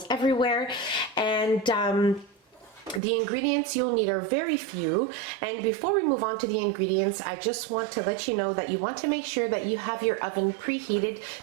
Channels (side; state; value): left; drops out; at 3.0 s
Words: everywhere, and the ingredients you'll need are very few. And before we move on to the ingredients, I just want to let you know that you want to make sure that you have your oven preheated